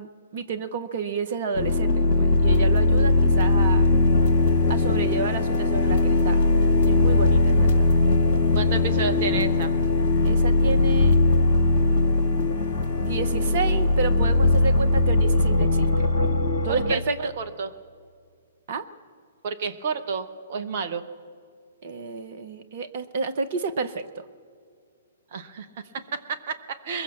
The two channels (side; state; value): both; inverted; correlation -0.65